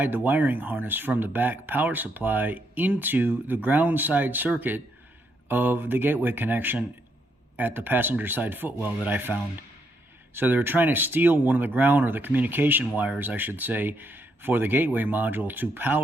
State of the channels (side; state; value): both; normal; correlation 0.77